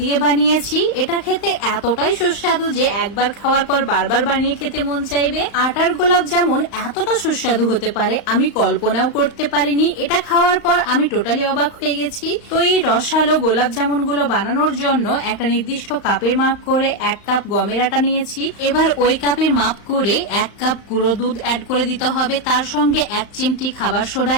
দিয়ে বানিয়েছি। এটা খেতে এতটাই সুস্বাদু যে একবার খাওয়ার পর বারবার বানিয়ে খেতে মন চাইবে। আটার গোলাপ জামুন এতটা সুস্বাদু হতে পারে আমি কল্পনাও করতে পারিনি। এটা খাওয়ার পর আমি টোটালি অবাক হয়ে গেছি। তো এই রসালো গোলাপ জামুন গুলো বানানোর জন্য একটা নির্দিষ্ট কাপের মাপ করে 1 কাপ গমের আটা নিয়েছি। এবার ওই কাপের মাপ করে 1 কাপ গুঁড়ো দুধ অ্যাড করে দিতে হবে। তার সঙ্গে 1 চিমটি খাবার সোডা,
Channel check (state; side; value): late; right; 35 ms